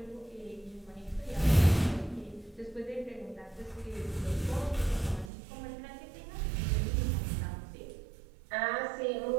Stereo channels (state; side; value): drops out; left; at 5.3 s